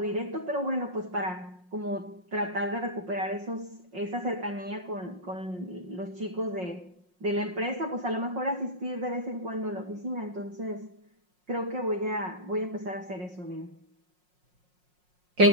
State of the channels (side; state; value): left; late; 5.5 ms